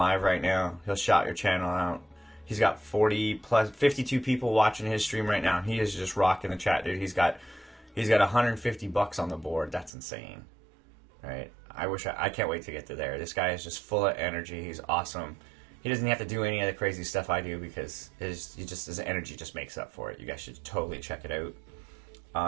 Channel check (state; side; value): drops out; left; at 9.9 s